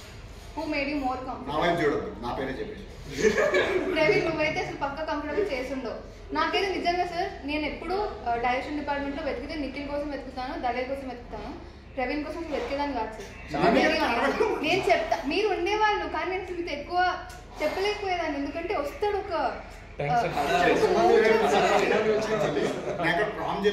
Who made you more comfortable? చూడదు, నా పేరే చెప్పేసి. ప్రవీణ్ నువ్వైతే అసలు పక్క కంఫర్టబుల్ చేసుండవు. నాకైతే నిజంగా సార్ నేను ఎప్పుడు డైరెక్షన్ డిపార్ట్మెంట్ లో వెతికితే నిఖిల్ కోసం వెతుకుతాను, దళేర్ కోసం వెతుకుతాను, ప్రవీణ్ కోసం వెతికేదాన్ని కాదు సార్. నేను చెప్తా మీరు ఉండేవాళ్ళు, కానీ నేను మీతో ఎక్కువ చెప్పలేకపోయేదాన్ని, ఎందుకంటే వస్తాడు ఒక ప్రామ్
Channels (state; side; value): identical; both; correlation 1.00